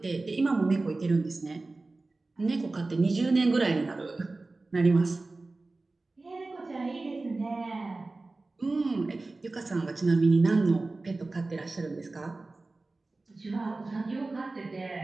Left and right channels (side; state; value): left; quieter; 3.3 dB